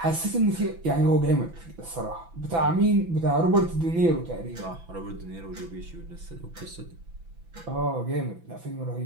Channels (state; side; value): late; left; 6.0 ms